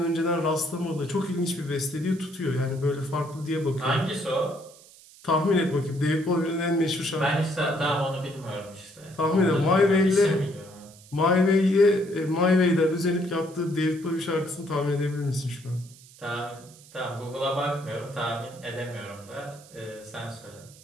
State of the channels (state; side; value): noise; right; hiss, 23 dB below the sound